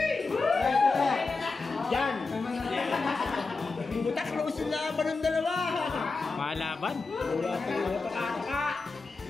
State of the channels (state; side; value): quieter; right; 4.0 dB